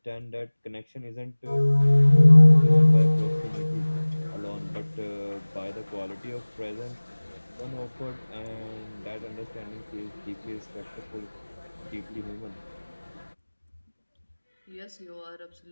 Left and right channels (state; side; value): inverted; both; correlation -1.00